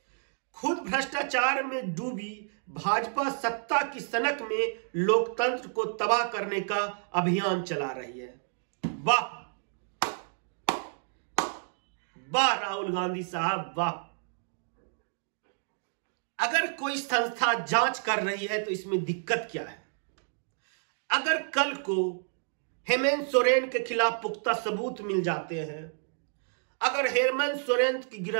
खुद भ्रष्टाचार में डूबी भाजपा सत्ता की सनक में लोकतंत्र को तबाह करने का अभियान चला रही है। वाह वाह राहुल गांधी साहब, वाह। अगर कोई संस्था जांच कर रही है तो इसमें दिक्कत क्या है? अगर कल को हेमंत सोरेन के खिलाफ पुख्ता सबूत मिल जाते हैं, अगर हेमंत सोरेन की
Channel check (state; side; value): silent; left; digital silence